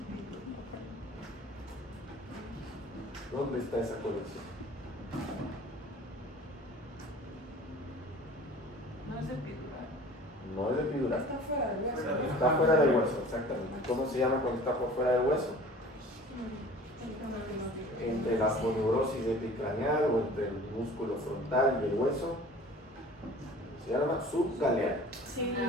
¿Dónde está esa colección? No es epidural. No es epidural. Está fuera del hueso. Está fuera del hueso, exactamente. ¿Cómo se llama cuando está por fuera del hueso? Entre la poneurosis epicraneal o entre el músculo frontal y el hueso. Se llama subgaleal. Sí.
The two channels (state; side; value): normal; both; correlation 0.44